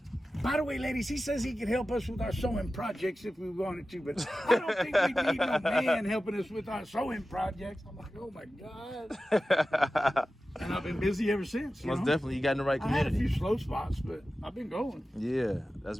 By the way, ladies, he says he can help us with our sewing projects if we wanted to, but I don't think we need no man helping us with our sewing projects. I'm like, oh my God. And I've been busy ever since. Most definitely, you got in the right I had a community. few slow spots, but I've been going. Yeah, that's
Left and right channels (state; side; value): normal; both; correlation 0.94